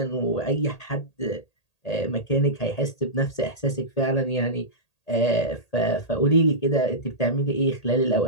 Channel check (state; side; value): late; right; 1.8 ms